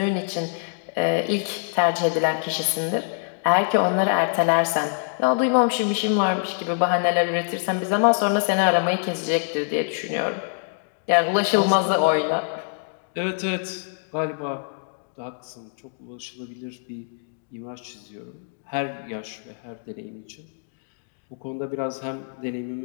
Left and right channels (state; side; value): silent; right; digital silence